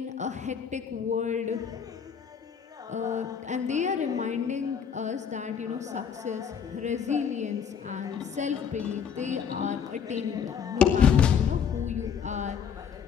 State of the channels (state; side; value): quieter; right; 7.3 dB